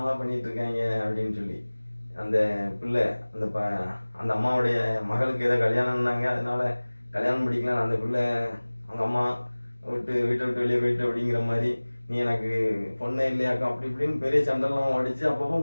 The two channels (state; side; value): inverted; both; correlation -1.00